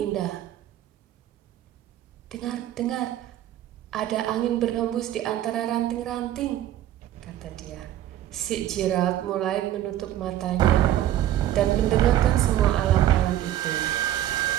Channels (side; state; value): left; quieter; 12.6 dB